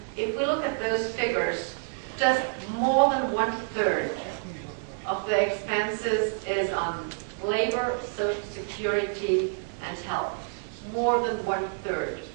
if we look at those figures, just more than 1/3 of the expenses is on labor, social security, and health. More than 1/3.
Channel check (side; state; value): left; silent; digital silence